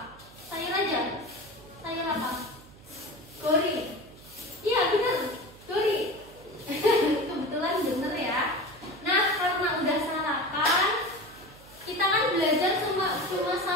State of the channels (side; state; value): right; noise; hum, 22 dB below the sound